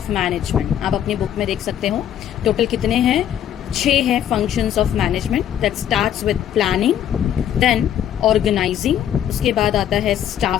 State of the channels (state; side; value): quieter; right; 10.3 dB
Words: management. आप अपनी बुक में देख सकते हो टोटल कितने हैं। 6 है functions of management. That starts with planning, then organising, उसके बाद आता है